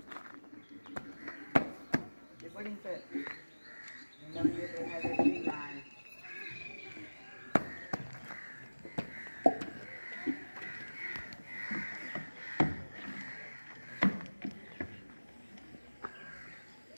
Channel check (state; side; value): inverted; both; correlation -1.00